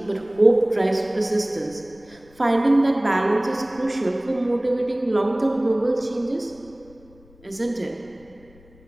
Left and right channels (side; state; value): left; noise; rumble, 27 dB below the sound